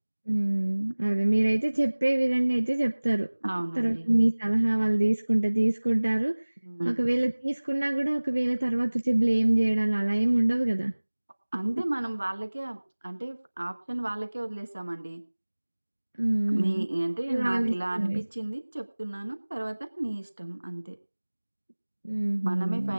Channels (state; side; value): inverted; both; correlation -1.00